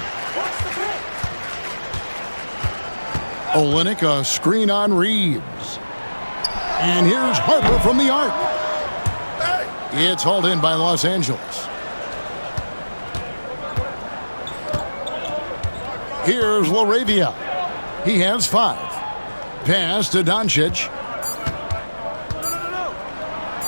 Olynyk, a screen on Reeves. And here's Harper from the arc. It's hauled in by Los Angeles. Here's Laravia. He has 5. Pass to Doncic.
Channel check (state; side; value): inverted; both; correlation -1.00